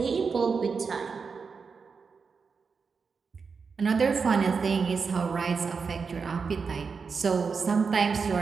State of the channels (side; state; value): left; quieter; 5.3 dB